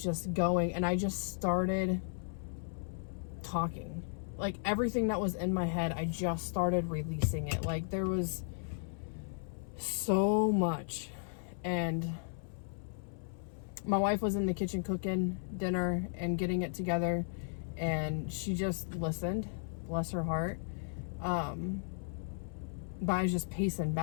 just going, and I just started talking. Like everything that was in my head, I just started releasing it. Like there was so much. And my wife was in the kitchen cooking dinner and getting it together, and she just listened, bless her heart. But I was just pacing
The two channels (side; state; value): right; silent; 54 dB below the other